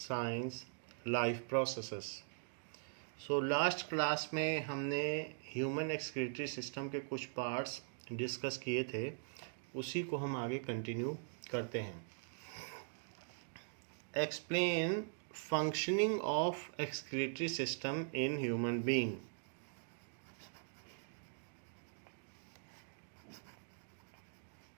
life processes. Last class में हमने ह्यूमन एक्सक्रीटरी सिस्टम के कुछ पार्ट्स डिस्कस किए थे, उसी को हम आगे कंटिन्यू करते हैं। Explain functioning of excretory system in human being.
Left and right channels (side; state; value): left; silent; digital silence